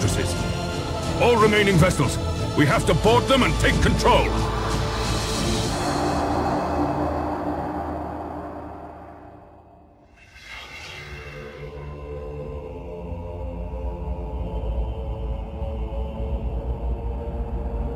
All remaining vessels, we have to board them and take control.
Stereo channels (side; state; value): both; identical; correlation 1.00